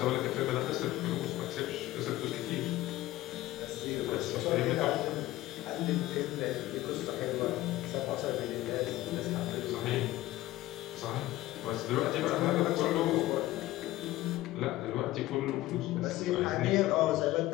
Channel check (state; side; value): quieter; right; 16.6 dB